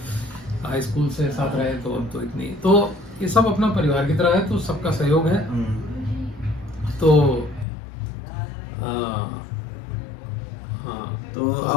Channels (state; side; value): drops out; right; at 7.7 s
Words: हाई स्कूल से साथ रहे, तो अब तो इतनी, तो ये सब अपना परिवार की तरह है, तो सबका सहयोग है। तो हाँ, तो